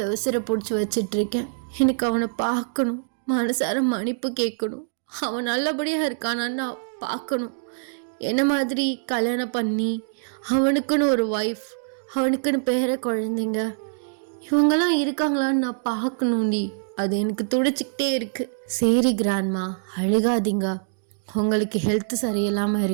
உசிரை பிடிச்சி வச்சிட்ருக்கேன். எனக்கு அவனை பார்க்கணும், மனசார மன்னிப்பு கேட்கணும். அவன் நல்லபடியாக இருக்கானான்னு நான் பார்க்கணும். என்ன மாதிரி கல்யாணம் பண்ணி அவனுக்குன்னு ஒரு ஒய்ஃப், அவனுக்குன்னு பேர குழந்தைங்க இவங்கெல்லாம் இருக்காங்களான்னு நான் பார்க்கணும்டி. அது எனக்கு துடிச்சிக்கிட்டே இருக்கு. சரி கிராண்ட்மா, அழுகாதீங்க, உங்களுக்கு ஹெல்த் சரியில்லாமல்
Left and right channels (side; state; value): left; silent; digital silence